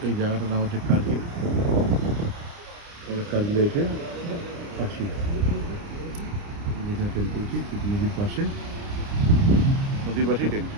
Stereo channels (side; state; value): left; late; 29 ms